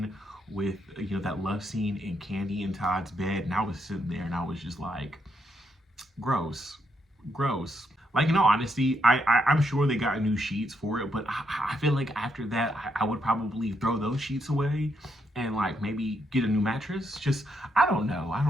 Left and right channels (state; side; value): normal; both; correlation 0.78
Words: with, you know, that love scene in Candy and Todd's bed, and I was sitting there and I was just like, gross. Like, in all honesty, I'm sure they got new sheets for it, but I feel like after that, I would probably throw those sheets away and like maybe get a new mattress. Just, I don't